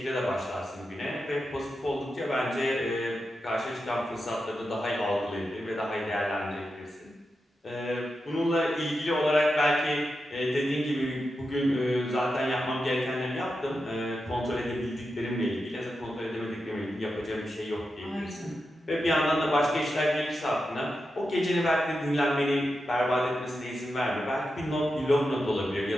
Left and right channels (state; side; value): normal; both; correlation 0.89